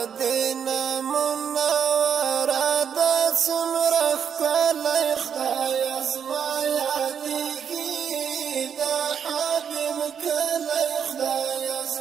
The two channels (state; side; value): quieter; left; 7.8 dB